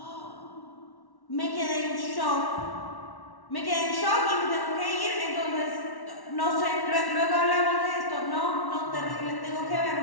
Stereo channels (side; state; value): right; late; 1.1 ms